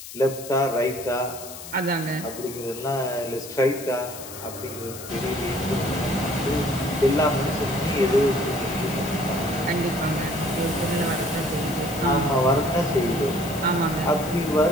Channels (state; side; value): noise; left; hiss, 13 dB below the sound